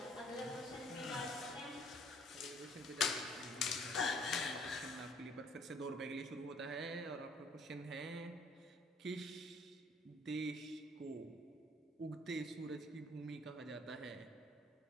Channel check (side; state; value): both; normal; correlation 0.59